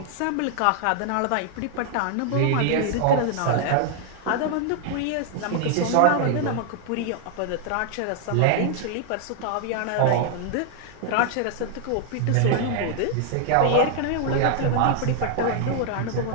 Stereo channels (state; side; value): different; both; correlation 0.00